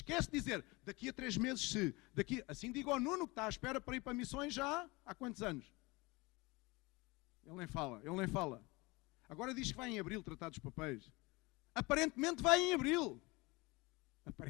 de dizer, daqui a 3 meses se... Assim digo ao Nuno, que está à espera para ir para missões já há quantos anos? Ele nem fala. Agora diz que vai em abril tratar dos papéis. Aparentemente vai em abril.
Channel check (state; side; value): quieter; right; 24.2 dB